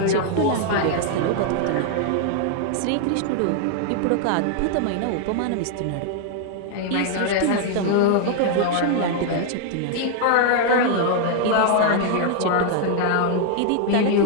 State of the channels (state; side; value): different; both; correlation 0.00